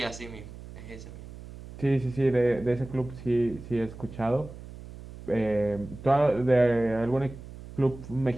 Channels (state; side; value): noise; right; hum, 15 dB below the sound